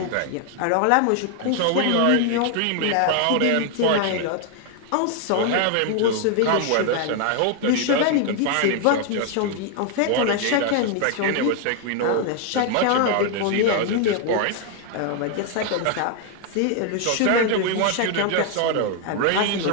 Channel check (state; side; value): different; both; correlation 0.00